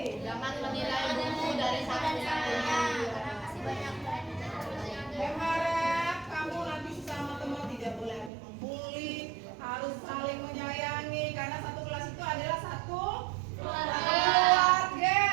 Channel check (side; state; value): left; drops out; at 8.3 s